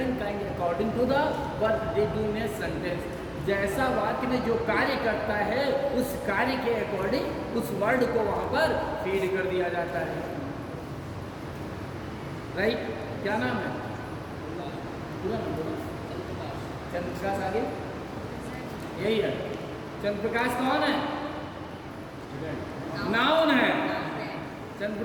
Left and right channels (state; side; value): identical; both; correlation 1.00